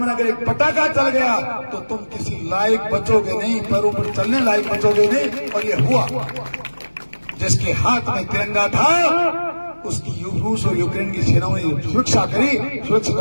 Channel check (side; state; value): both; inverted; correlation -1.00